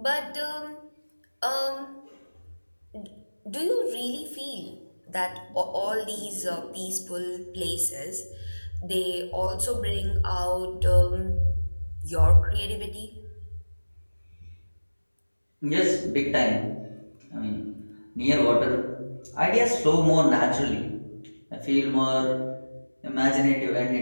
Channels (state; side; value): inverted; both; correlation -1.00